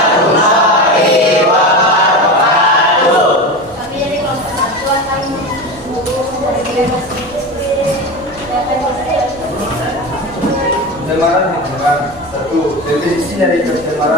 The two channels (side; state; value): both; normal; correlation 0.25